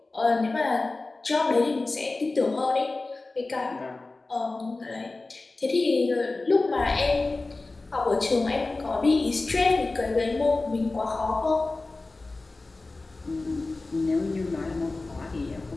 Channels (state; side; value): quieter; right; 3.3 dB